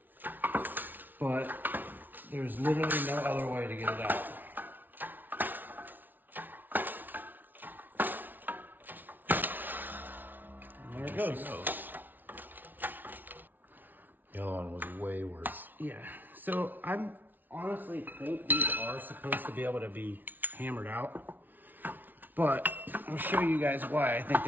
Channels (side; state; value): left; late; 0.086 ms